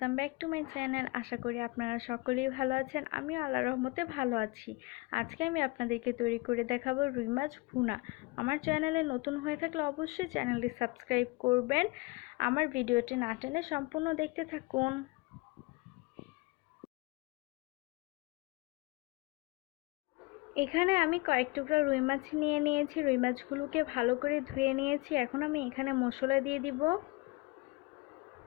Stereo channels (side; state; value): right; quieter; 24.8 dB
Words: back to my channel. আশা করি আপনারা সকলেই ভালো আছেন। আমিও আল্লাহর রহমতে ভালো আছি। আজকে আমি আপনাদেরকে তৈরি করে দেখাবো রুই মাছ ভুনা। আমার চ্যানেলে নতুন হয়ে থাকলে অবশ্যই চ্যানেলটি সাবস্ক্রাইব করবেন। আমার ভিডিওটি না টেনে সম্পূর্ণ দেখতে থাকুন। এখানে আমি কয়েক টুকরা রুই মাছ নিয়ে নিয়েছি। রুই মাছগুলোকে ভালো করে ধুয়ে নিয়েছি। এখন আমি এখানে মশলা দিয়ে দিব।